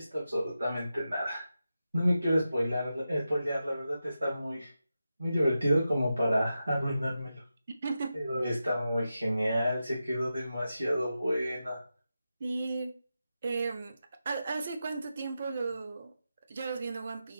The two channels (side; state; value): both; inverted; correlation -0.90